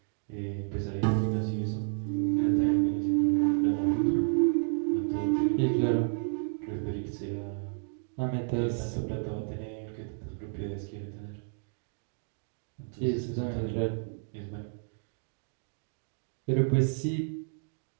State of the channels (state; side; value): silent; left; 57 dB below the other